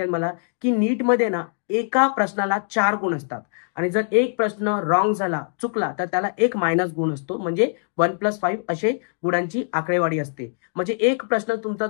मला, की नीटमध्ये ना एका प्रश्नाला 4 गुण असतात आणि जर एक प्रश्न रॉंग झाला, चुकला, तर त्याला एक मायनस गुण असतो. म्हणजे 1+5 असे गुणांची आकडेवारी असते. म्हणजे एक प्रश्न तुमचा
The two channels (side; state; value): right; silent; digital silence